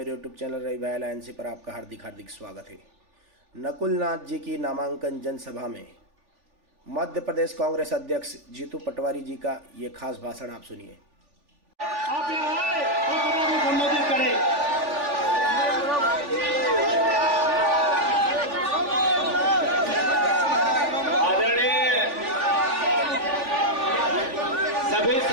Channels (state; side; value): late; left; 3.4 ms